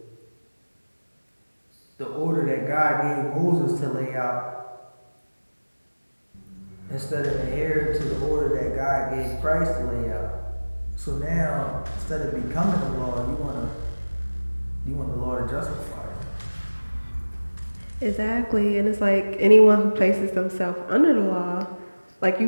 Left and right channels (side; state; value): both; inverted; correlation -1.00